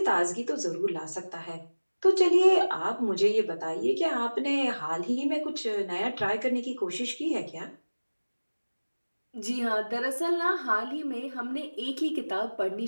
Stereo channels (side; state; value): both; inverted; correlation -1.00